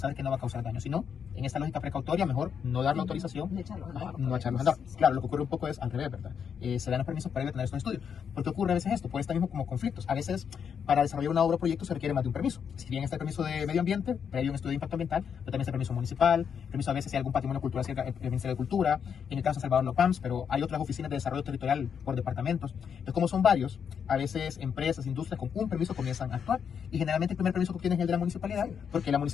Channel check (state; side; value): quieter; right; 7.3 dB